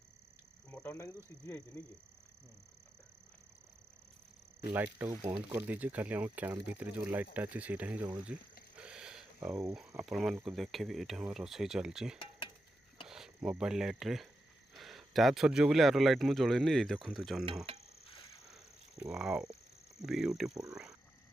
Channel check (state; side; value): normal; both; correlation 0.88